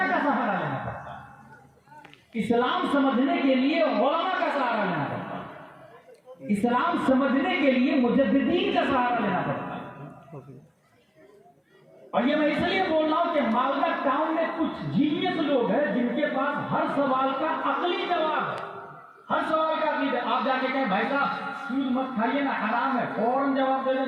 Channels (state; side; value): identical; both; correlation 1.00